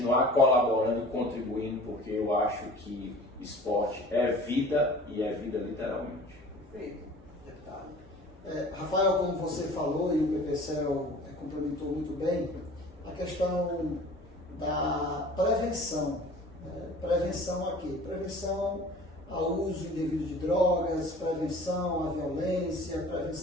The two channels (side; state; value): both; normal; correlation 0.45